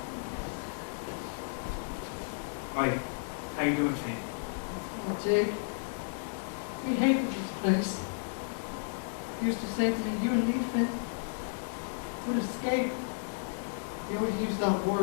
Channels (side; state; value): right; silent; 56 dB below the other